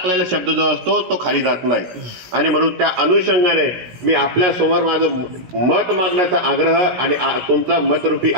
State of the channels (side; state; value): left; late; 17 ms